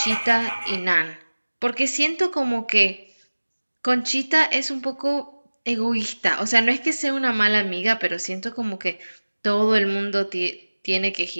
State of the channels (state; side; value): inverted; both; correlation -1.00